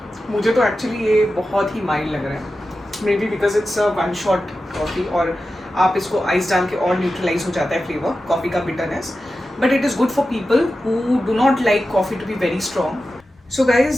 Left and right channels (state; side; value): normal; both; correlation 0.92